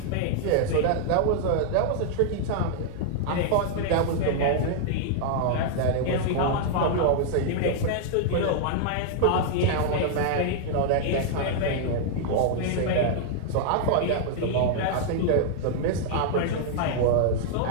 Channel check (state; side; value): different; both; correlation -0.01